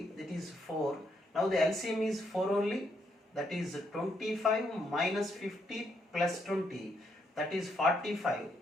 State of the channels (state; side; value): normal; both; correlation 0.75